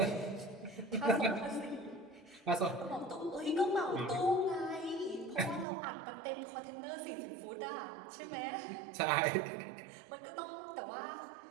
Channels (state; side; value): drops out; left; at 5.7 s